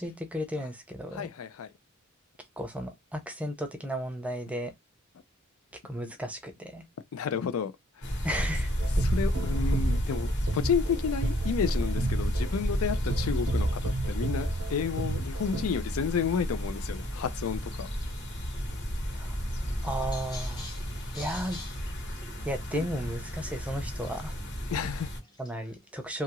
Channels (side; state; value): both; normal; correlation 0.63